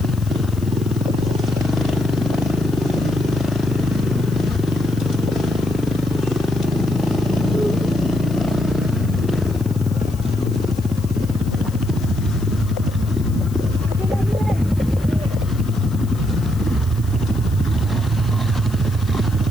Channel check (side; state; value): left; noise; hiss, 21 dB below the sound